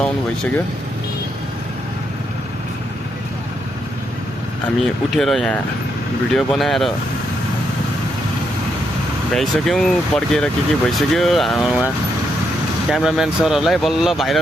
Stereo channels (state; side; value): normal; both; correlation 0.79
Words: आउनु भइसक्यो। हामी उठेर यहाँ भिडियो बनाएर भ्याइसक्यौँ, पड्केर के भइसक्यो। उहाँ क्यामराम्यान सरहरूलाई बल्ल